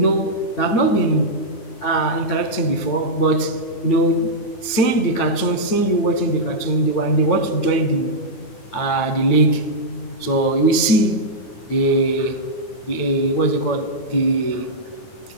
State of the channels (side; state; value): right; late; 9.0 ms